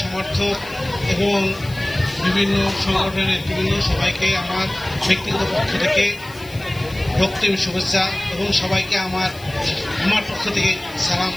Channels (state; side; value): noise; left; hiss, 21 dB below the sound